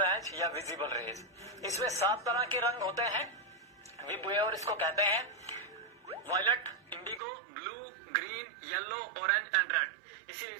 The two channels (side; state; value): left; drops out; at 7.2 s